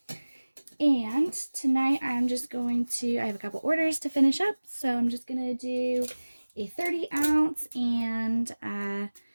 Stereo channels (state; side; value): inverted; both; correlation -1.00